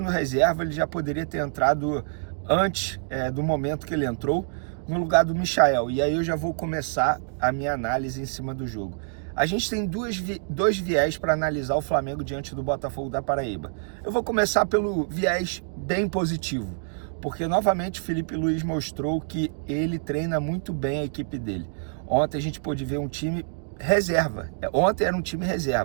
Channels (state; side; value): silent; left; digital silence